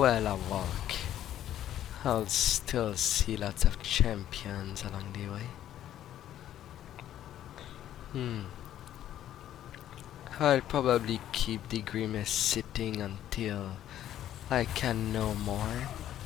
I'll walk. I'll still see lots of champions along the way. I'll probably keep the Grimace sitting until I can no more.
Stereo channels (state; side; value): quieter; right; 11.8 dB